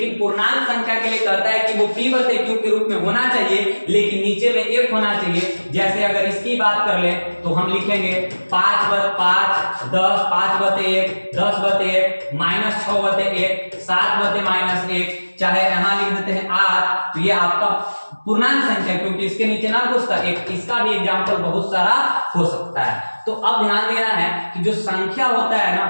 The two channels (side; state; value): both; inverted; correlation -1.00